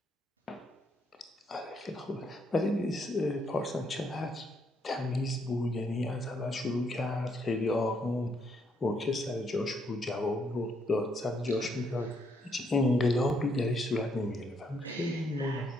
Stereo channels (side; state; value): both; normal; correlation 0.73